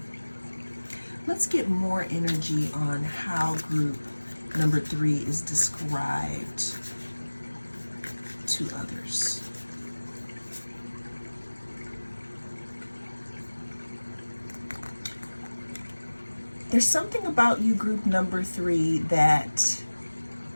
Let's get more energy on how group number 3 is described to others. There's something about you, group number 3, that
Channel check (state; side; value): inverted; both; correlation -1.00